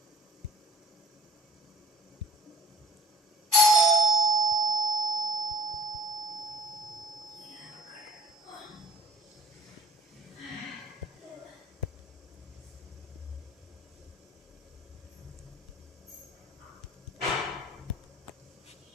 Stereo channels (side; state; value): both; normal; correlation 0.49